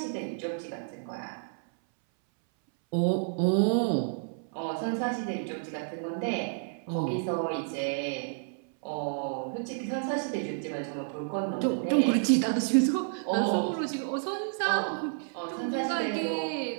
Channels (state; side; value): silent; left; 58 dB below the other